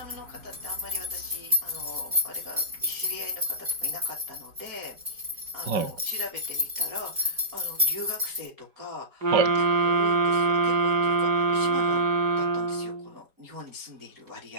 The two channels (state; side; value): late; left; 4.7 ms